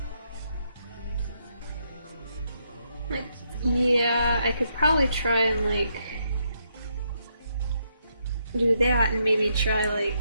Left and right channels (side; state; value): both; inverted; correlation -0.78